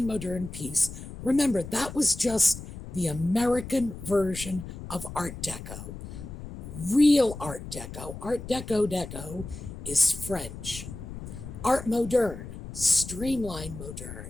modern piece. Remember, that was just the American version of Art Deco. Real Art Deco is French. Art moderne, streamlined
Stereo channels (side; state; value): left; noise; rumble, 11 dB below the sound